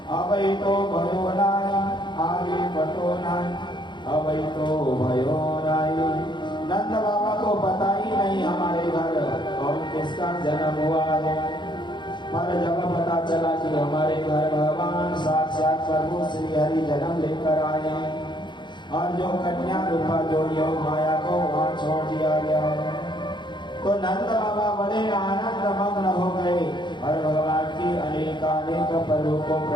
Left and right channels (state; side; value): late; right; 0.22 ms